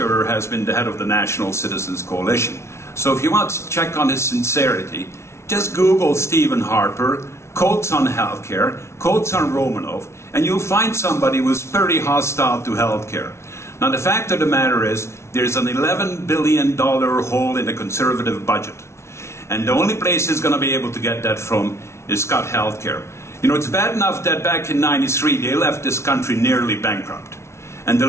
has been the head of the National Citizens Coalition. So if you want to check on his sincerity, just Google Stephen Harper, quotes on healthcare, quotes on Romanov, and you'll find somebody who's pretty hostile to healthcare. Now the fact of the matter is, there's an $11 billion hole in the Conservative budget. And the only place he's going to be able to get that from is cut healthcare. You know, it's bad enough that back in '93 they left this country nearly bankrupt. And the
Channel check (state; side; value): late; right; 0.13 ms